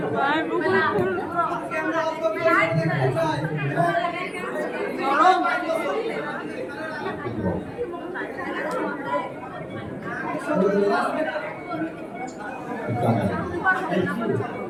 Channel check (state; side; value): identical; both; correlation 1.00